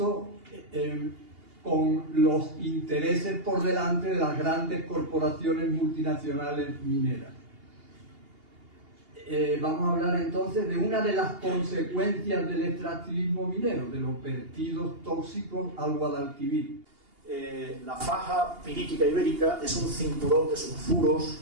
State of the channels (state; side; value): late; left; 2.8 ms